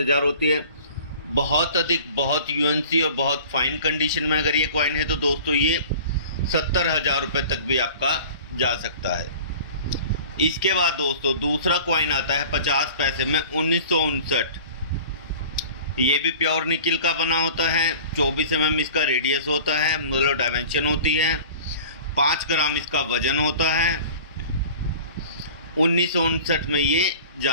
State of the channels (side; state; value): both; inverted; correlation -0.43